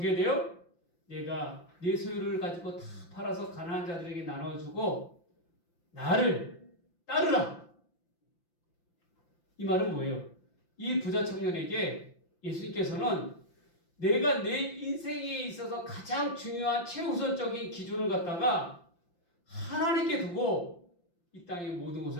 돼요? 내가 내 소유를 가지고 다 팔아서 가난한 자들에게 나눠주고 나를 따르라. 이 말은 뭐예요? 이 부자 청년에게 예수님께서는 내가 내 인생에 있어서 가장 중요한 최우선적인 기준을 갖다가 하나님께 두고 이 땅의 모든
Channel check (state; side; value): late; right; 5.8 ms